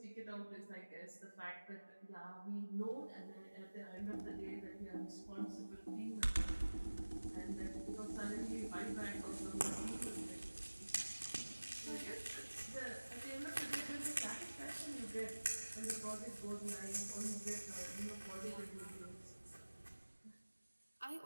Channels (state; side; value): inverted; both; correlation -1.00